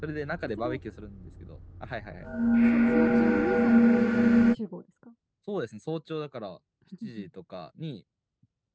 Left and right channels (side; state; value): both; identical; correlation 1.00